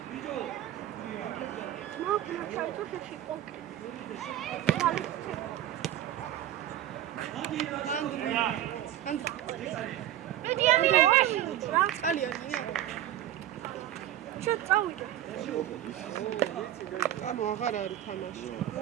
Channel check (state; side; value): quieter; left; 12.4 dB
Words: ანუ აღარ არის თამაში.